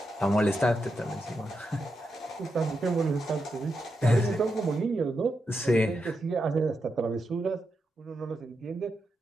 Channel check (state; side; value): normal; both; correlation 0.85